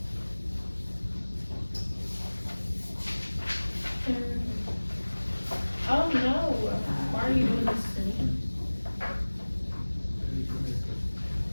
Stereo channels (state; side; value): inverted; both; correlation -1.00